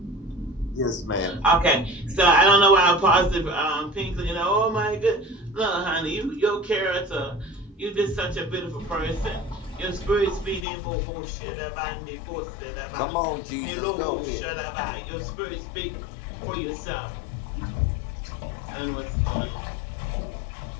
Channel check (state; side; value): drops out; right; at 10.7 s